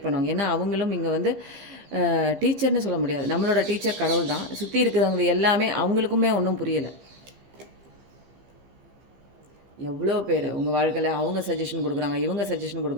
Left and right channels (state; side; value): late; left; 15 ms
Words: பண்ணுவாங்க. ஏன்னா அவங்களும் இங்கே டீச்சர்னு சொல்ல முடியாது. நம்மளோட டீச்சர் கடவுள் தான். சுற்றி இருக்கிறவங்க எல்லாமே அவங்களுக்குமே ஒன்றும் புரியலை. எவ்வளோ பேர் உங்கள் வாழ்க்கையில் அவங்க சஜஷன் கொடுக்குறாங்க, இவங்க சஜஷன்